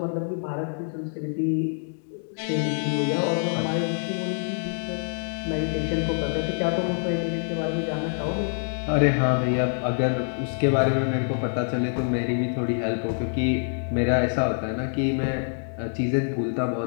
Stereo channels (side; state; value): right; silent; 61 dB below the other